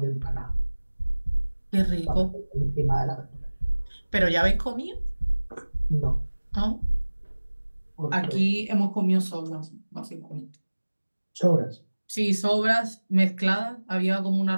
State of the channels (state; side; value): inverted; both; correlation -1.00